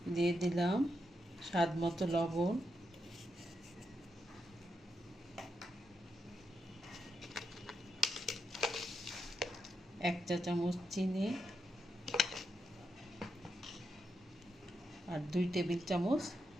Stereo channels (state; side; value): normal; both; correlation 0.84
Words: দিয়ে দিলাম স্বাদ মতো লবণ, এক চা চামচ চিনি আর 2 টেবিল চামচ